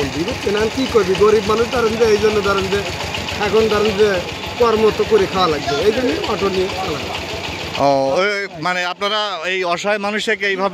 বুঝছেন? কি করবি, গরিব মানুষ ধরেন যে এই জন্য ধরেন যে এখন ধরেন যে কর্ম তো করে খাওয়া লাগবে, এই জন্য অটো নিয়ে খাওয়া লাগবে। ও, আপনারা এই অসহায় মানুষকে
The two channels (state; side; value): identical; both; correlation 1.00